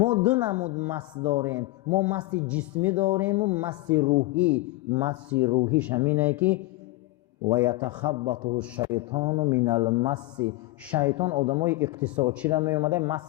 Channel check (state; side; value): quieter; right; 19.4 dB